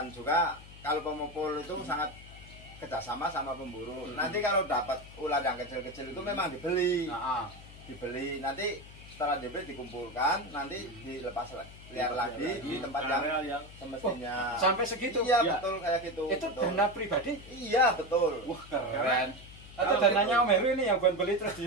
juga kalau pengepul itu sangat kerjasama sama pemburu. Nanti kalau dapat ular yang kecil-kecil itu memang dibeli. Nanti setelah dibeli dikumpulkan, nanti dilepas liar lagi di tempat yang semestinya. Sampai segitu? Iya, betul kayak gitu. Itu betul. dana pribadi? Iya, betul. Wah, keren. Atau dananya Om Heru ini yang buat beli terus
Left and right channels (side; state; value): left; noise; hum, 18 dB below the sound